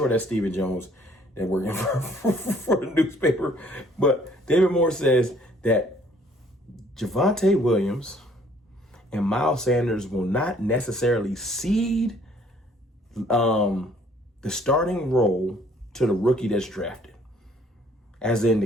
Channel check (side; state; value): both; normal; correlation 0.60